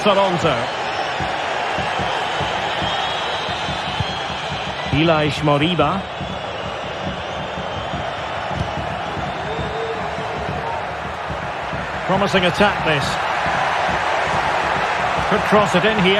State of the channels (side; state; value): both; identical; correlation 1.00